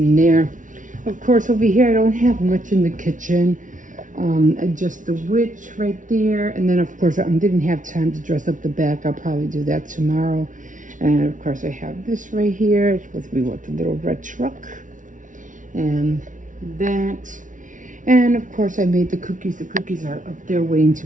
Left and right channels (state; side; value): late; left; 0.37 ms